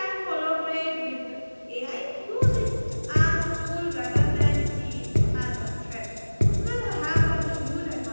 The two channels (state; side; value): inverted; both; correlation -1.00